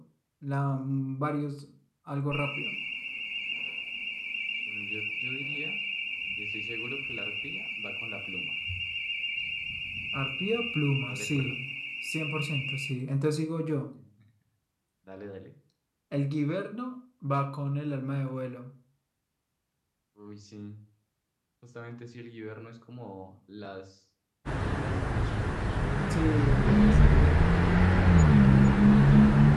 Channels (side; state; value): both; identical; correlation 1.00